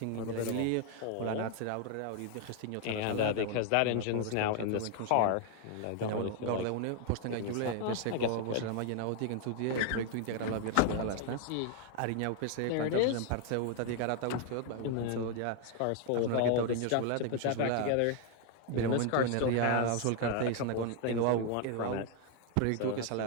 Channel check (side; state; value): both; different; correlation 0.00